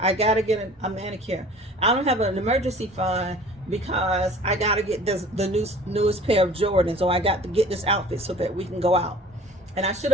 I gotta get a manicure. I don't have an emergency fund because I gotta get the newest pair of Jordans, or I got to get this outfit so that we can go out. And I should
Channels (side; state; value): both; normal; correlation 0.46